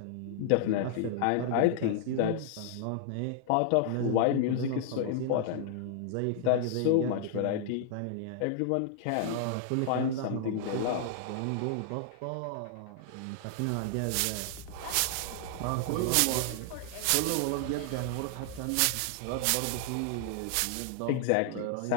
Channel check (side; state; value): both; different; correlation -0.01